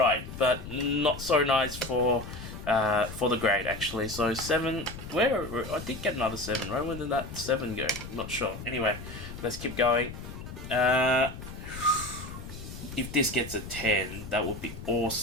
but not so nice for the grade actually. So 7. Where I did get another 7, right? Where did that 7 go? I'm not sure. Anyway, let's keep going. If this gets a 10, that would be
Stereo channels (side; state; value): left; noise; rumble, 11 dB below the sound